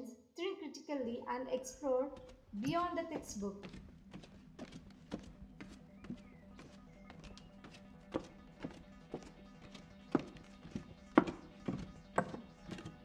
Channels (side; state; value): both; identical; correlation 1.00